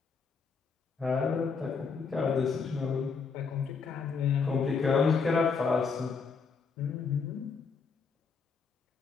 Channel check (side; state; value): right; quieter; 5.2 dB